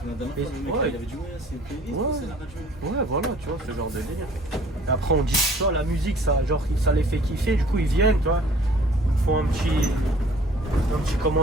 la dernière Et- fois, le mec, ouais. il avait dit, ouais, c'est une playlist, Ouais. c'est la radio. Ouais, voilà, tu vois, ce genre de délire. Et après, on dit, tu vois, la musique, ça, genre, ça les fait kiffer, du coup, ils viennent, tu vois, ils font un petit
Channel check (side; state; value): both; normal; correlation 0.54